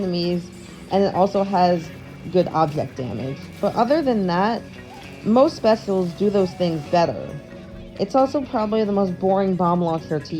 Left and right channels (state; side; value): identical; both; correlation 1.00